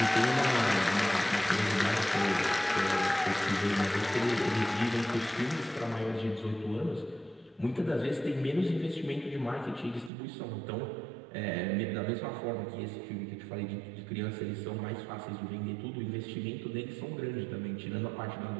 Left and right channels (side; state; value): left; drops out; at 10.1 s